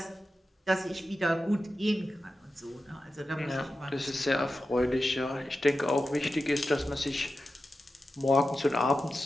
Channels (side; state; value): both; normal; correlation 0.92